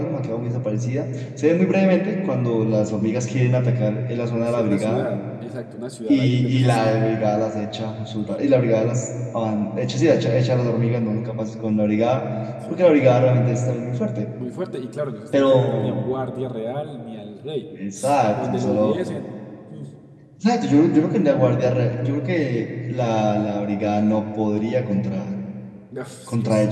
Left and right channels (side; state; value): both; identical; correlation 1.00